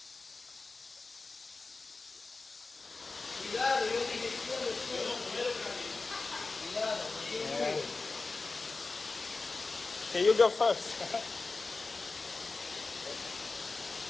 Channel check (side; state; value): right; quieter; 3.8 dB